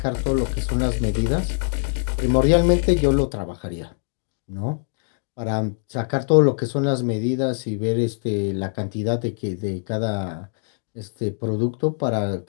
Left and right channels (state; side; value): silent; right; 61 dB below the other